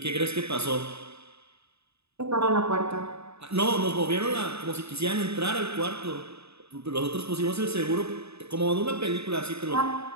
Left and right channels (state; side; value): late; left; 0.79 ms